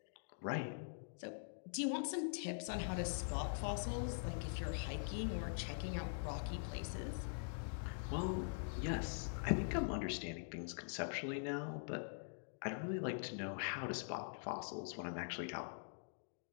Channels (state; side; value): silent; right; digital silence